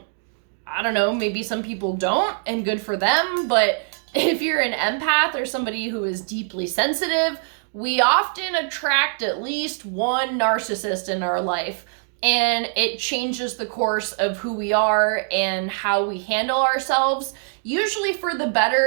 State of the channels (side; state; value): left; silent; digital silence